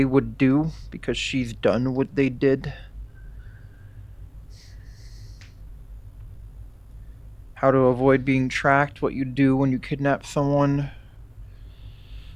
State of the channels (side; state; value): both; identical; correlation 1.00